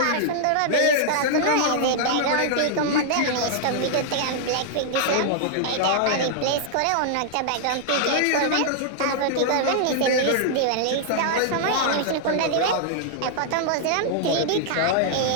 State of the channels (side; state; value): both; different; correlation -0.01